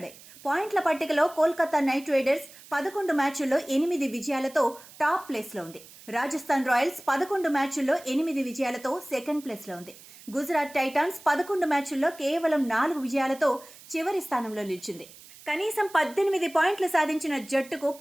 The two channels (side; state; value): right; noise; hiss, 20 dB below the sound